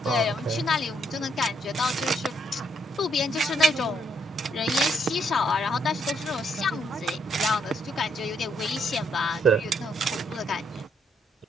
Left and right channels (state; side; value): normal; both; correlation 0.72